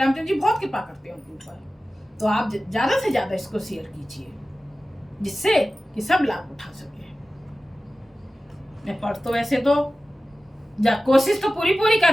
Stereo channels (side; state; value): both; normal; correlation 0.96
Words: जी बहुत कृपा करते हैं उनके ऊपर। तो आप ज़्यादा से ज़्यादा इसको शेयर कीजिए, जिससे कि सब लाभ उठा सके। मैं पढ़ तो वैसे तो कोशिश तो पूरी